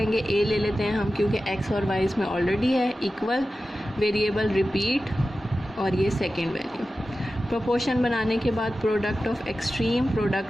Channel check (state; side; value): normal; both; correlation 0.94